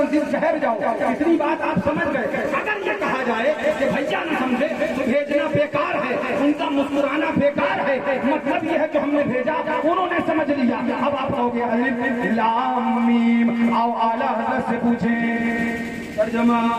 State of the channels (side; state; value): both; identical; correlation 1.00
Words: ٹھہر جاؤ، اتنی بات آپ سمجھ گئے۔ اگر یہ کہا جائے کہ بھیا نہ سمجھے تو بھیجنا بیکار ہے، ان کا مسکرانا بیکار ہے، مطلب یہ ہے کہ ہم نے بھیجا انہوں نے سمجھ لیا۔ اب آپ کہو گے الف لام میم، آؤ اعلیٰ حضرت سے پوچھیں ترجمہ